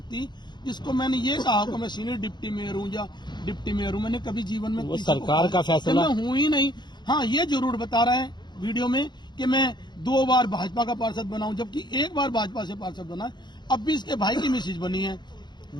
जिसको मैंने ये कहा कि मैं सीनियर डिप्टी मेयर हूँ या डिप्टी मेयर हूँ? मैंने कभी जीवन में वो सरकार का फैसला, मैं हूँ ही नहीं। हाँ, ये जरूर बता रहा है वीडियो में कि मैं 2 बार भाजपा का पार्षद बना हूं, जबकि 1 बार भाजपा से पार्षद बना है। अब भी इसके भाई की मिसेज बनी है,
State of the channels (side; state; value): right; late; 0.21 ms